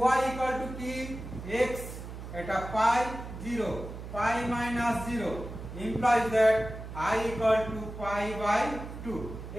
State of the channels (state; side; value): noise; right; hum, 10 dB below the sound